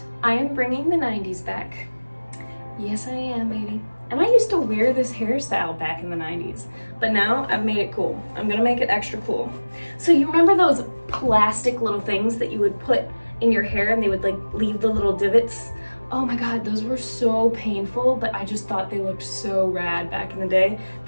I am bringing the 90s back. Yes, I am, baby. And I used to wear this hairstyle back in the 90s, but now I've made it cool. I'm gonna make it extra cool. So you remember those plastic little things that you would put in your hair and they would like leave the little divots? Oh my God, those were so painful, but I just thought they looked so rad back in the day.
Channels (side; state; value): both; inverted; correlation -1.00